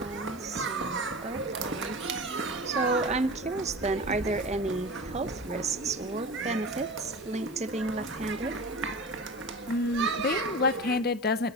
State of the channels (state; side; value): noise; left; hiss, 25 dB below the sound